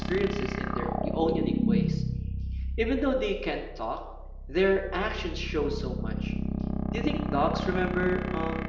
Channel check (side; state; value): both; identical; correlation 1.00